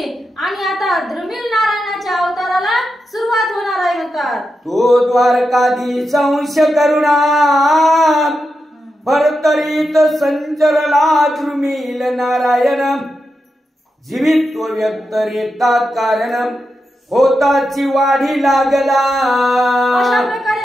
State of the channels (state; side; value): normal; both; correlation 0.88